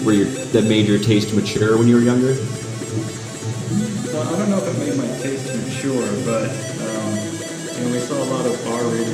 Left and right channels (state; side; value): identical; both; correlation 1.00